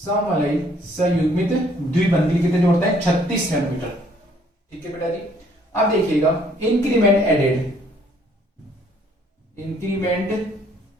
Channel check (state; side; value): normal; both; correlation 0.63